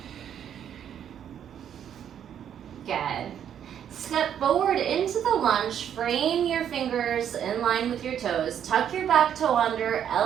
Good. Step forward into the lunge, frame your fingers in line with your toes, tuck your back toe under,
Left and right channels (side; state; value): left; quieter; 9.3 dB